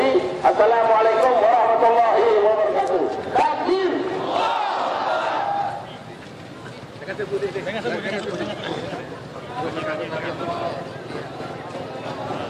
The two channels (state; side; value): identical; both; correlation 1.00